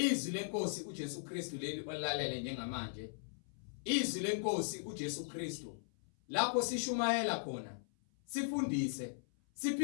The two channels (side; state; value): right; silent; 52 dB below the other